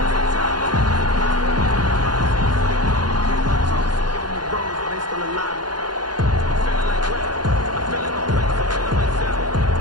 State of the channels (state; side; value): late; left; 0.70 ms